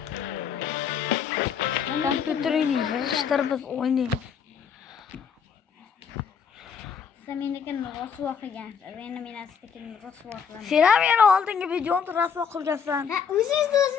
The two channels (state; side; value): quieter; right; 6.8 dB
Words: Kompüterini yığıştırıp biz oynayalım. Sen meniki rasuvo qilgansiz. Endi men astakini rasuvo qilaman. Sen ham yana oldingi videoni rasuvo qilgansan. Ha,